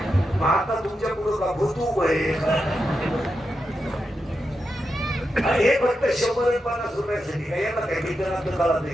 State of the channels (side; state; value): both; normal; correlation 0.87